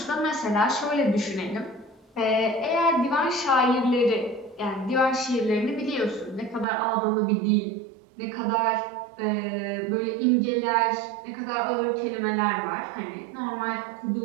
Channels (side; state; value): left; drops out; at 6.7 s